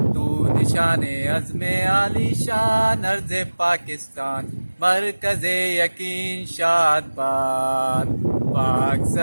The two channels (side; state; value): both; inverted; correlation -1.00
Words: तू निशाने अज़्मे आलीशान अर्ज़े पाकिस्तान मरकज़े यकीन शादबाद पाक